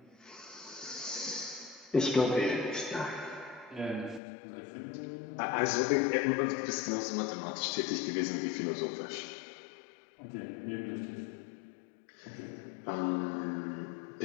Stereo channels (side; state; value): right; drops out; at 4.2 s